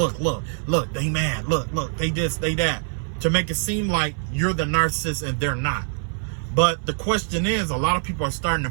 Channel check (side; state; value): left; silent; 57 dB below the other